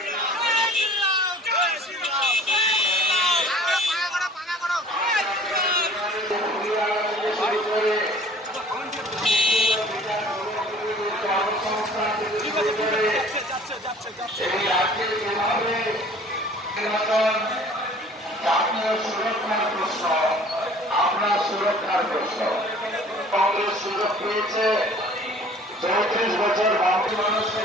এই রাজ্যে যেভাবে জাতীয় সুরক্ষার প্রশ্ন, আপনার সুরক্ষার প্রশ্ন, কংগ্রেস সুযোগ পেয়েছে 34 বছর বাঙালি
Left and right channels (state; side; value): normal; both; correlation 0.49